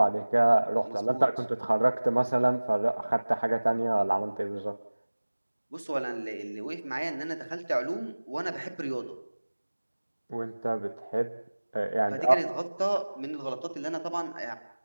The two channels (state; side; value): inverted; both; correlation -1.00